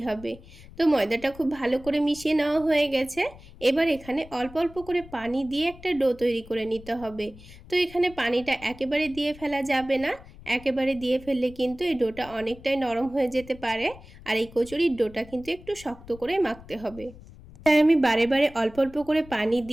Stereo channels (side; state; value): left; noise; rumble, 19 dB below the sound